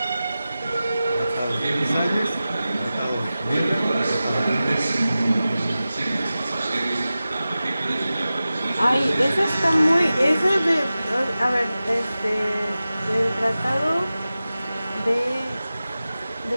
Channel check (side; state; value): both; inverted; correlation -0.95